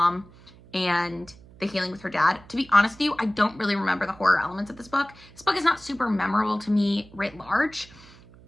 and the healing with her dad. To be honest with you, I don't really remember the horror elements of this book. This book is not super memorable to me writ large.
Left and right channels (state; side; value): noise; right; hum, 23 dB below the sound